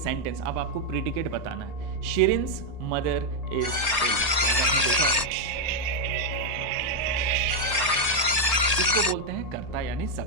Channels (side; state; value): left; late; 1.8 ms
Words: अब आपको predicate बताना है। शिरिन्स मदर इज इल, आपने देखा होगा। इसको बोलते हैं कर्ता यानी